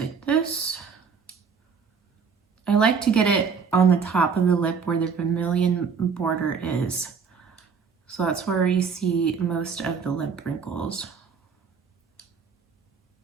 this. I like to get it on the top of the lip where the vermilion border is. So that's where you see most of the lip wrinkles.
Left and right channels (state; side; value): quieter; left; 5.9 dB